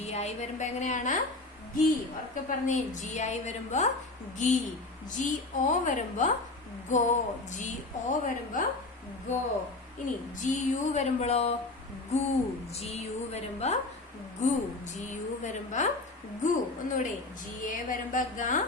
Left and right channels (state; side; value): quieter; right; 3.1 dB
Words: ഐ വരുമ്പോ എങ്ങനെയാണ്? ഗി. ഉറക്കെ പറഞ്ഞേ. ജി ഐ വരുമ്പോ ഗി. ജി ഒ വരുമ്പോ ഗോ. ജി ഒ വരുമ്പോ ഗോ. ഇനി ജി യു വരുമ്പോഴോ ഗു. ജി യു വരുമ്പോ ഗു. ജി യു വരുമ്പോ ഗു. ഒന്നുകൂടെ. ജി എ വരുമ്പോ ഗ.